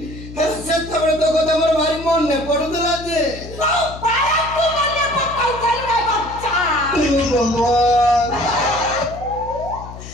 ସେତେବେଳେ ତ କଥା ମୋର ଭାରି ମନେ ପଡୁଥିଲା ଯେ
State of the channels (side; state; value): left; noise; hum, 13 dB below the sound